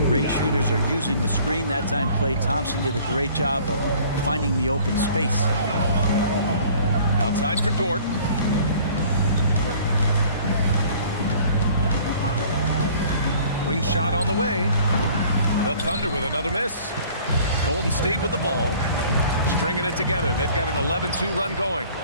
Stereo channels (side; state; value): both; inverted; correlation -0.52